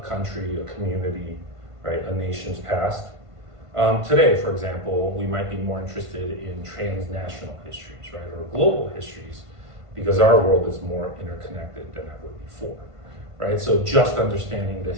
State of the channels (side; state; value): left; late; 1.5 ms